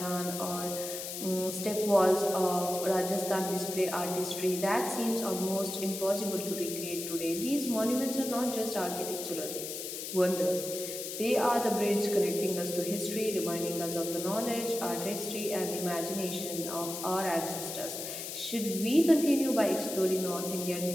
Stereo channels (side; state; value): left; noise; hiss, 7 dB below the sound